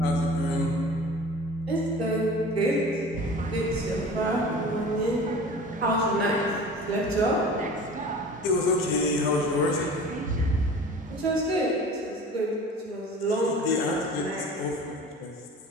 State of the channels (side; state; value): both; normal; correlation 0.40